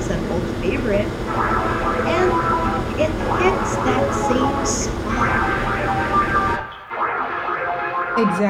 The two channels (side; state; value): both; identical; correlation 1.00